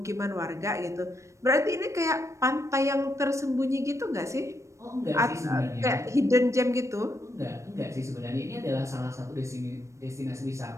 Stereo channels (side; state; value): left; late; 0.15 ms